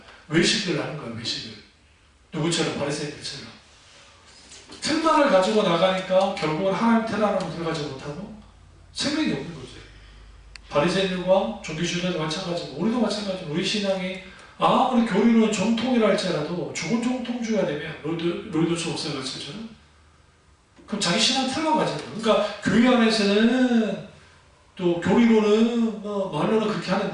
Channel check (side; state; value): both; identical; correlation 1.00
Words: 외식을 하는 거예요. 외식을. 누구처럼? 바리새인들처럼. 틀만을 가지고 나가니까 결국은 하나님 틀 안으로 들어가지 못하고 생명이 없는 거죠. 바리새인들과 종교주의자도 마찬가지고 우리도 마찬가지고 우리 신앙이 아무리 교리론 정통이라 할지라도 죽은 정통주의가 되면 로이더스 목사가 가르쳐줘요. 그럼 자기 신앙 틀만 가지는 거예요. 그러니까 교회 안에서는 또 교리론은 말로는 그렇게